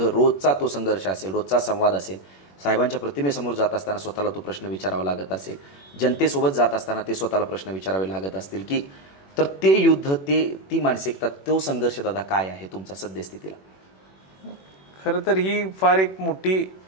रोजचा तो संघर्ष असेल, रोजचा संवाद असेल, साहेबांच्या प्रतिमेसमोर जात असताना स्वतःला तो प्रश्न विचारावा लागत असेल, जनतेसोबत जात असताना ते स्वतःला प्रश्न विचारावे लागत असतील की, तर ते युद्ध, ती मानसिकता, तो संघर्ष दादा काय आहे तुमचा सद्यस्थितीला? खरं तर ही फार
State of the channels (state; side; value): late; right; 21 ms